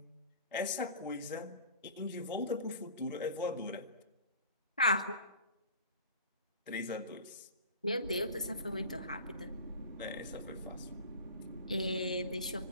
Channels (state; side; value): inverted; both; correlation -0.40